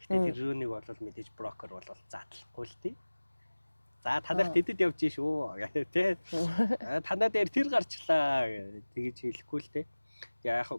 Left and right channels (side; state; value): both; inverted; correlation -1.00